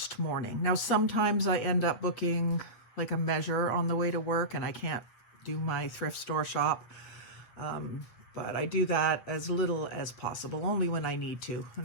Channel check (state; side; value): late; right; 8.0 ms